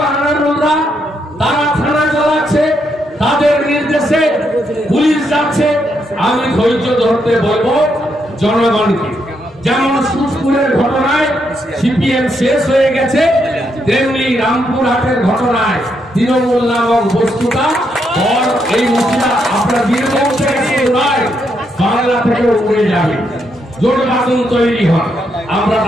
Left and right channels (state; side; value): normal; both; correlation 0.78